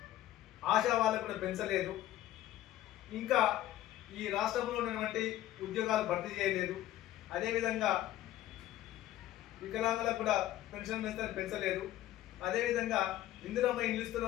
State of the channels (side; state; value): right; quieter; 13.9 dB